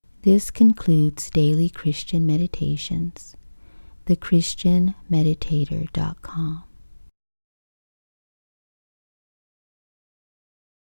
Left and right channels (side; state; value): both; inverted; correlation -1.00